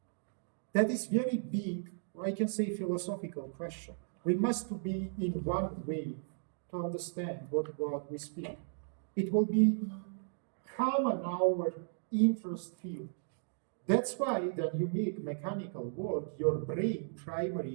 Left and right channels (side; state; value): left; silent; digital silence